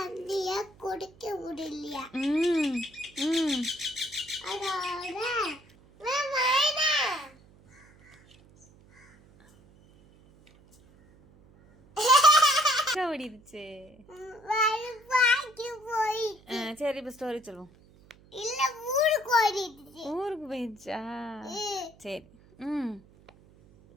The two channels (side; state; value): right; noise; hum, 27 dB below the sound